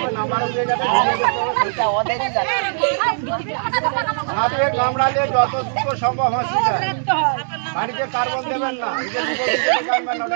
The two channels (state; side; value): silent; left; digital silence